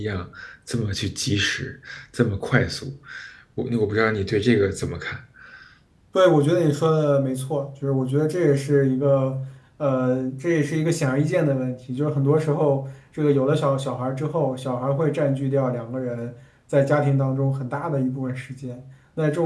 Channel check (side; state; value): both; identical; correlation 1.00